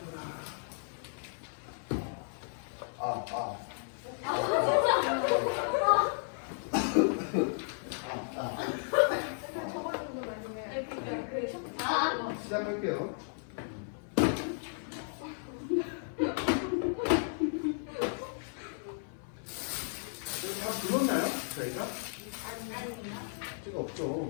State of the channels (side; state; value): right; silent; 55 dB below the other